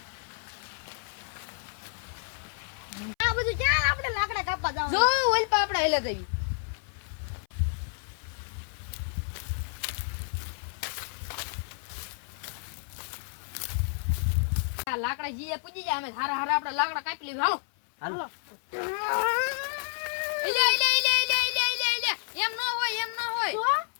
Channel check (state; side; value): silent; right; 58 dB below the other